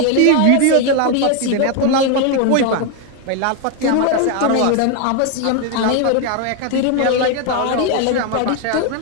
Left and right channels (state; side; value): different; both; correlation 0.01